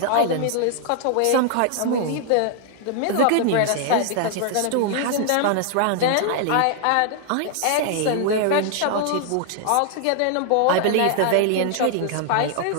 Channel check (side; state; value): both; different; correlation -0.01